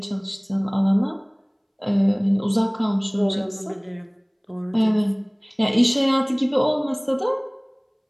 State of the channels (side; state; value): both; identical; correlation 1.00